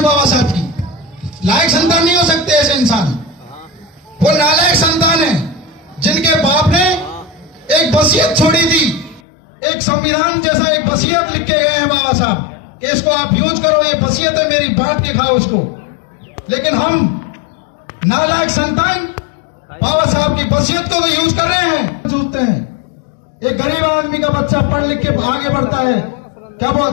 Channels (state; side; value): drops out; right; at 9.2 s